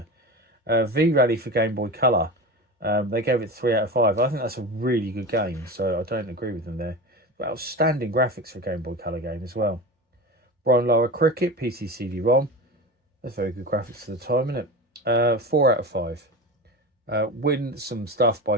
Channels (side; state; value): both; normal; correlation 0.27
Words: V-Rally for Game Boy Color. They gave it 3 out of 5. I think that's a really good game, so I don't agree with them there. But outstanding graphics for a Game Boy Color game as well. Brian Lara Cricket, PC CD-ROM. That's very good graphics for the time, isn't it? 4 out of 5. Win some stuff